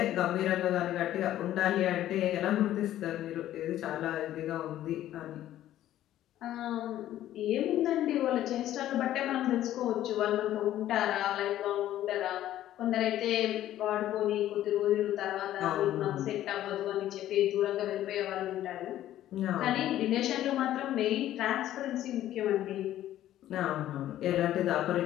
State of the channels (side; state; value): right; quieter; 12.9 dB